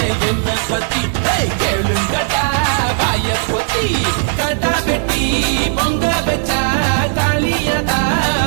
என்ன பத்தி கேளுங்கடா வாய பொத்தி கடா வெட்டி பொங்க வச்சா காளியதா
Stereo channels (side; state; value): left; silent; 65 dB below the other